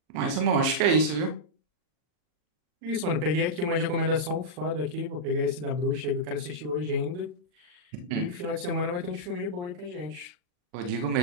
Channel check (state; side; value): late; left; 40 ms